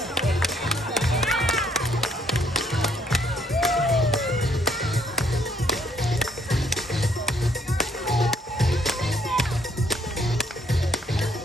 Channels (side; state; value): both; normal; correlation 0.67